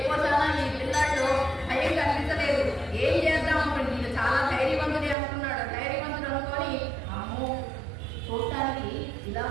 కోసాన ఈ పిల్లాడు భయం కనిపించలేదు. ఏం చేద్దాం అనుకుంటే ఈయన చాలా ధైర్యవంతుడే అనుకున్నాడు. ధైర్యవంతుడు అనుకొని అమ్మో చూడటానికి ఇలా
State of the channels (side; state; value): left; drops out; at 5.2 s